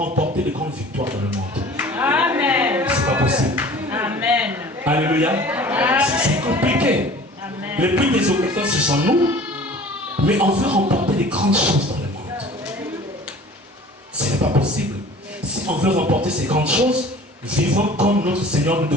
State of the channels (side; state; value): both; normal; correlation 0.45